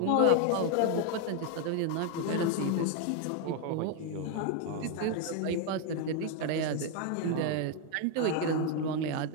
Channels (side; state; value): both; different; correlation 0.01